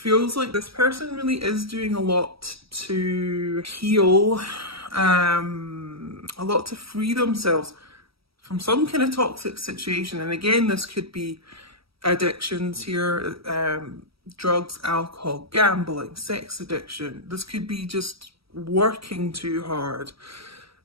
like this person really is doing a lot to heal, a lot to free themselves from some kind of toxic situation. And again, this could be addictions here, drugs, alcohol, gambling, sex addiction. This could be just working too hard.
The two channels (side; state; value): left; late; 0.76 ms